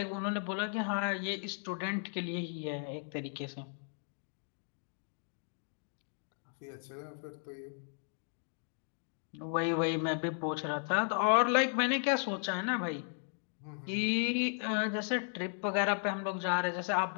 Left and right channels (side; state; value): right; silent; 54 dB below the other